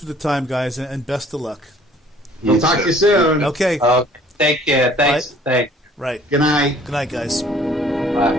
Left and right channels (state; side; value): normal; both; correlation 0.56